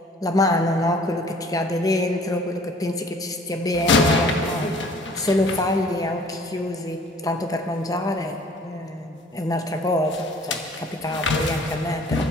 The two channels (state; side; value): normal; both; correlation 0.52